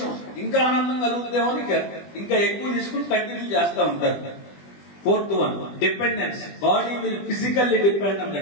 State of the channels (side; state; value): right; late; 20 ms